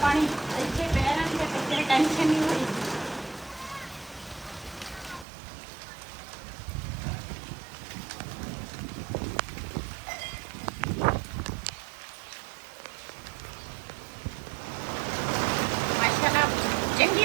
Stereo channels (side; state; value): left; drops out; at 5.2 s